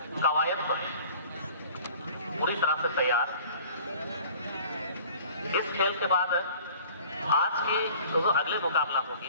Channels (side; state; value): both; inverted; correlation -0.48